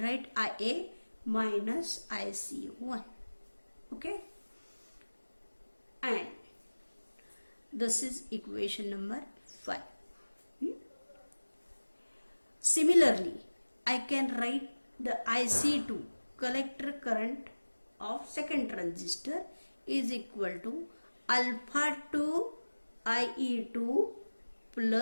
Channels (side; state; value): both; inverted; correlation -1.00